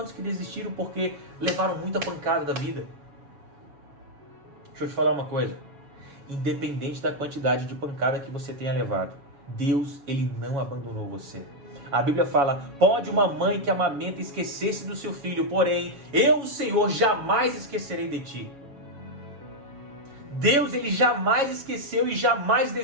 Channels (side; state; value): left; late; 7.1 ms